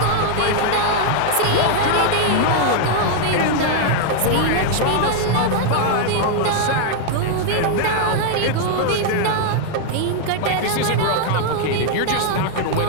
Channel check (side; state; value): both; different; correlation 0.00